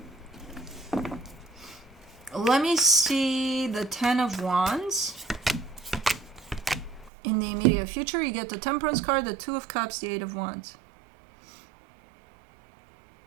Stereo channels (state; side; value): drops out; left; at 7.1 s